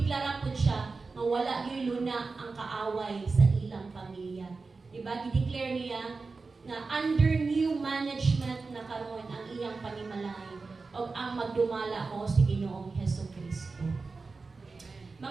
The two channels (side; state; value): left; quieter; 4.1 dB